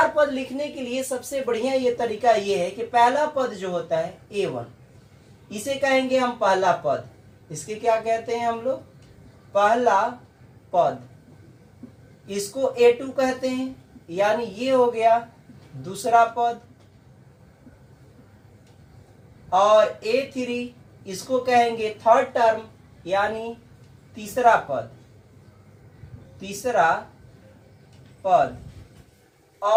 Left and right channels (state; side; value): identical; both; correlation 1.00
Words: पद लिखने के लिए सबसे बढ़िया ये तरीका ये है कि पहला पद जो होता है A1, इसे कहेंगे हम पहला पद। इसके क्या कहते हैं हम लोग? पहला पद। इसको A2 कहते हैं, यानी ये हो गया दूसरा पद। और A3 इसको कहेंगे थर्ड टर्म, यानी तीसरा पद। तीसरा पद।